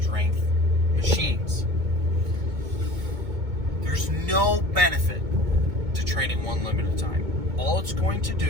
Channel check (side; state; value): left; late; 2.2 ms